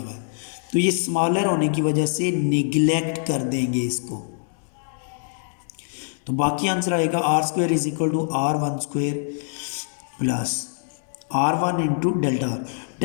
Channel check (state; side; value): silent; right; digital silence